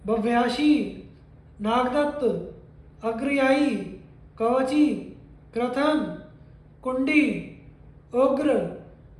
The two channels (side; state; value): both; identical; correlation 1.00